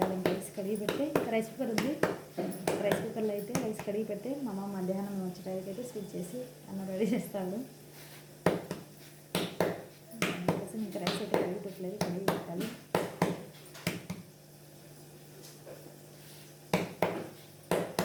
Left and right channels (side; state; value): both; identical; correlation 1.00